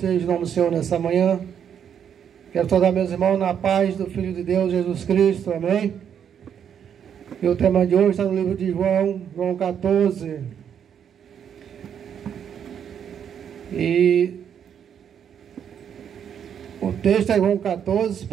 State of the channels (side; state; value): left; quieter; 8.4 dB